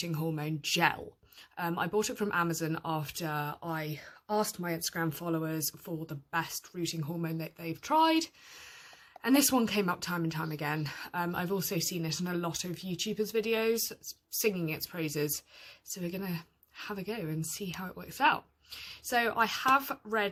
hormone gel. I bought it from Amazon after I asked my Instagram followers for the best rooting hormone that they've tried. And this one came up time and time again. I've also seen it in a lot of YouTubers' videos singing its praises. So we're going to have a go and see how it works out. So I have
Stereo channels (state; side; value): identical; both; correlation 1.00